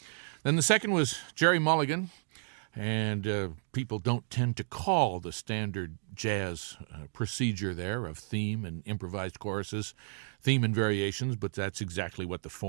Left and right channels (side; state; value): left; silent; digital silence